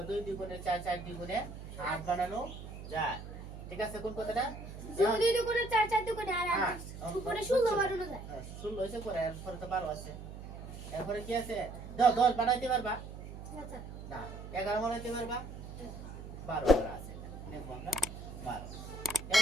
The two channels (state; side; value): noise; right; hum, 11 dB below the sound